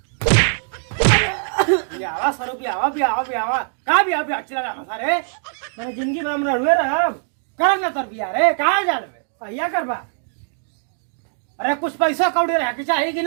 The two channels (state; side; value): silent; left; 65 dB below the other